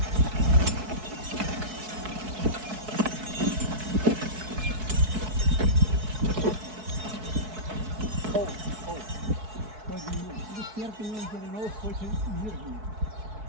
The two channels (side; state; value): left; late; 4.6 ms